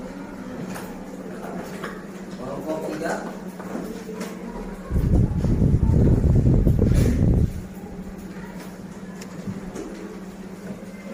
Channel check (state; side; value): identical; both; correlation 1.00